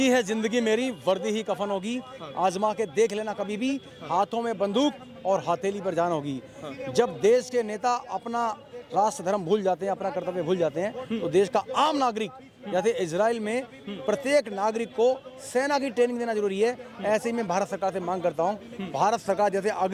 है जिंदगी मेरी, वर्दी ही कफन होगी। आजमा के देख लेना कभी भी, हाथों में बंदूक और हथेली पर जान होगी। जब देश के नेता अपना राष्ट्र धर्म भूल जाते हैं, अपना कर्तव्य भूल जाते हैं, तो देश का आम नागरिक, जैसे इजराइल में प्रत्येक नागरिक को सेना की ट्रेनिंग देना जरूरी है, ऐसे ही मैं भारत सरकार से मांग करता हूं। भारत सरकार जैसे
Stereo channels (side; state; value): both; identical; correlation 1.00